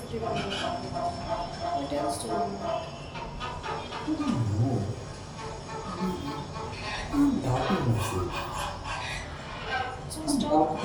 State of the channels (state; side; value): identical; both; correlation 1.00